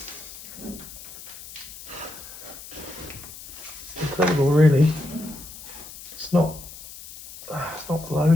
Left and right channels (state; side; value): noise; left; hiss, 15 dB below the sound